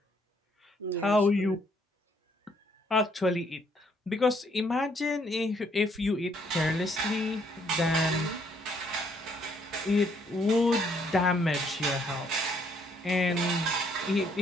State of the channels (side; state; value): both; normal; correlation 0.68